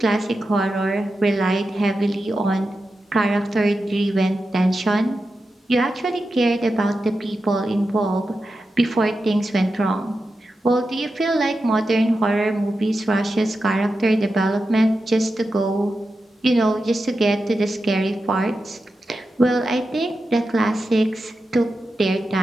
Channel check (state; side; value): normal; both; correlation 0.90